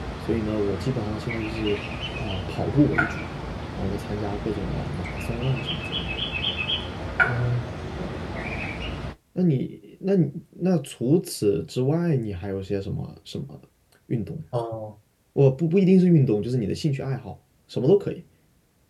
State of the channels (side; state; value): both; identical; correlation 1.00